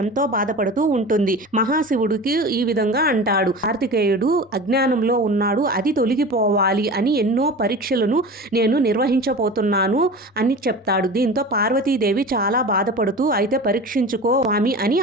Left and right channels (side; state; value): both; normal; correlation 0.34